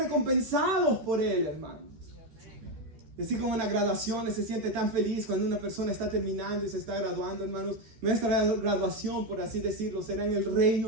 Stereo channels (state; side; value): late; left; 13 ms